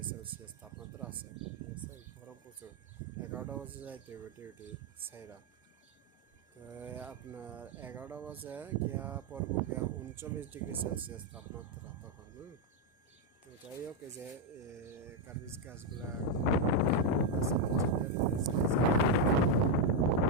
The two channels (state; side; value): normal; both; correlation 0.02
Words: তাপমাত্রা আছে। ঠিক আছে, গরম প্রচুর। 11টা বাজে যাইতে হবে ডিউটি সাইরা। তো আপনার 11টা বাজে গিয়া পড়বো গিয়া 39°C তাপমাত্রা তখন। তো যাই হোক, এই যে কার্বিজ গাছগুলা